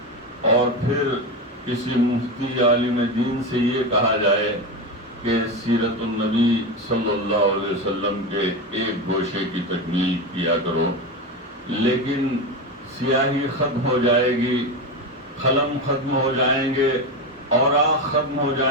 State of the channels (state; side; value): normal; both; correlation 0.18